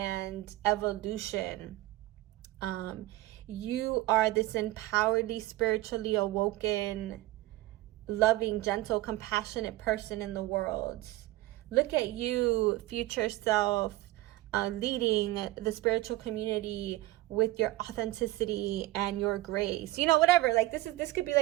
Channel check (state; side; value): quieter; left; 17.8 dB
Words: evolution. You are this empoweredly, spiritually awoken, loving, gentle, compassionate person in the world. Look at you, future self, leading the spiritual community with your authenticity and your grace. Whatever. Like this could be